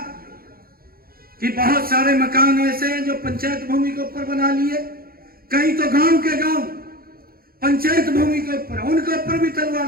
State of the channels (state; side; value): late; left; 0.43 ms